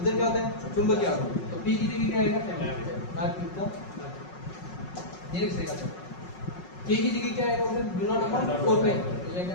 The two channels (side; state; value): right; late; 5.5 ms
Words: क्या होता है चुंबकीय आघूर्ण। तो p की जगह क्या आएगा r क्यूब का ये लिखेगा। k की जगह क्या आएगा उधर म्यू नॉट अपॉन 4 पाई, तो ये क्या